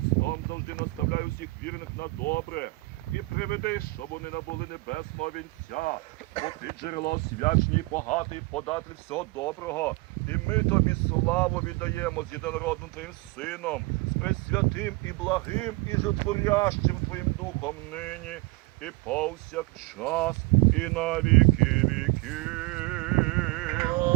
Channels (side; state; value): left; quieter; 24.3 dB